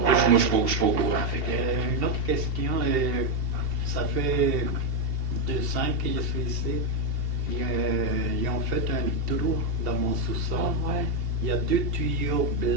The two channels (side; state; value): left; late; 2.7 ms